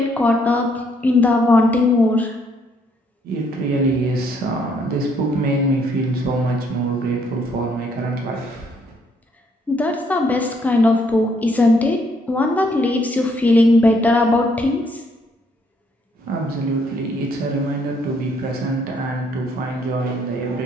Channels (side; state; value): both; normal; correlation 0.69